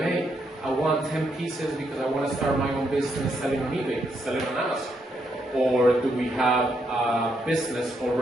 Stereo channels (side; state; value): both; normal; correlation 0.78